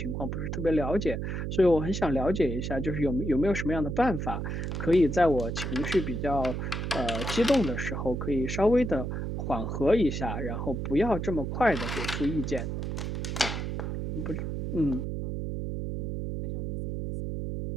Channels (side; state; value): right; noise; hum, 3 dB below the sound